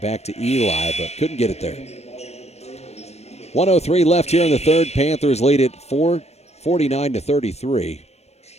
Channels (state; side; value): late; right; 0.31 ms